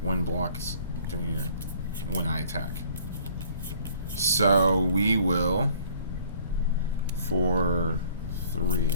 1 blocks during when I attack. So, we will, for 3, I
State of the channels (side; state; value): both; inverted; correlation -0.56